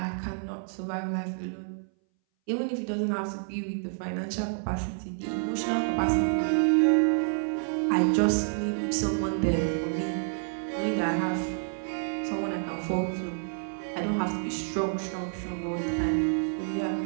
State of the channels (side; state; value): left; silent; 59 dB below the other